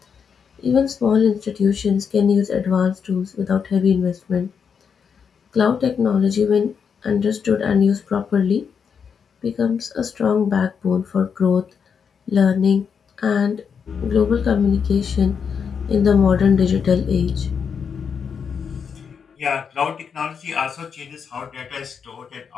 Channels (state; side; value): quieter; right; 6.6 dB